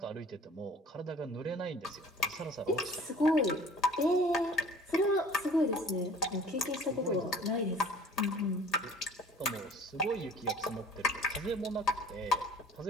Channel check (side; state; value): both; normal; correlation 0.49